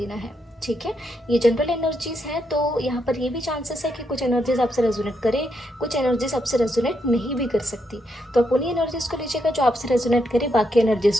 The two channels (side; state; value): both; normal; correlation 0.80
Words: है, ठीक है। ये जनरल एनर्जीज हैं, तो यहाँ पर ये भी चांसेस है कि कुछ एनर्जीज आपसे रेजोनेट करे, कुछ एनर्जीज आपसे रेजोनेट नहीं भी कर सकती। तो आप उन्हीं एनर्जीज को लीजिएगा जो आपसे रेजोनेट करे, बाकी एनर्जीज